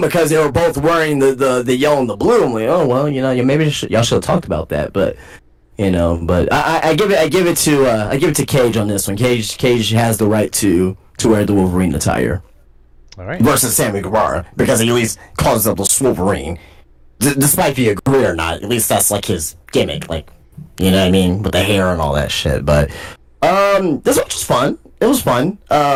they were both wearing the yellow and the blue. I'm like, oh well, maybe y'all should have talked about that. But but I give it to Cage on this one. Cage has the right to wear the Wolverine attire. All right. Versus Sammy Guevara, because he at least calls himself the Wolverine. Despite if you agree or not, at least that's like his gimmick, like, you know what I mean, with the hair and all that shit. But this one was fun. It was fun.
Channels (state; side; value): identical; both; correlation 1.00